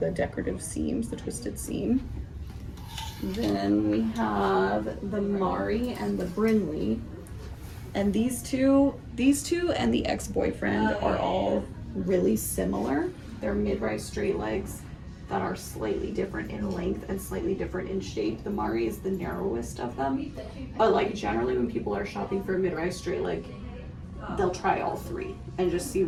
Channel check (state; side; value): identical; both; correlation 1.00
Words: decorative seams, the twisted seam. Then we have the Mari and the Brinley. And these two and the Ex-Boyfriend are all really similar. They're mid-rise straight legs that are slightly different in length and slightly different in shape. The Mari is the narrowest of them. But like generally when people are shopping for a mid-rise straight leg, they'll try all three and just see